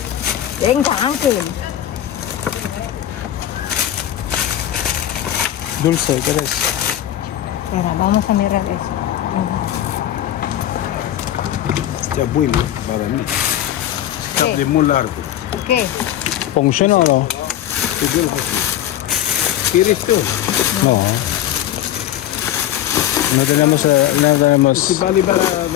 Venga, Ángel. Dulce, ¿qué es? Mira, vamos a mirar eso. Está bueno para mí. Está ¿Qué? de muy largo. ¿Qué? ¿Funciona o no? ¿Quieres tú? No. No tenemos, no tenemos. Si vale para la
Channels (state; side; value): quieter; right; 12.1 dB